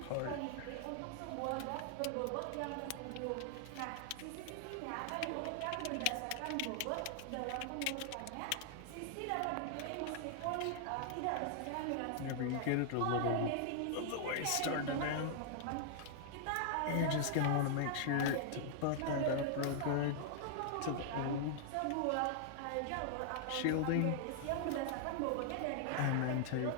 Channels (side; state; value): both; different; correlation -0.01